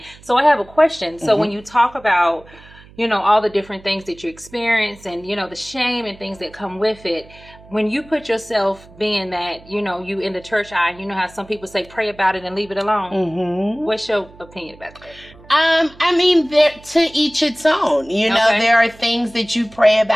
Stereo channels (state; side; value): noise; right; hum, 23 dB below the sound